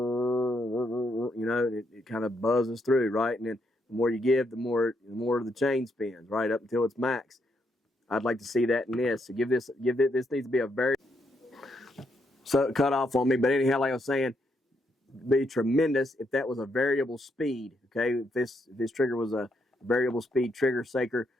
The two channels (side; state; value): both; normal; correlation 0.77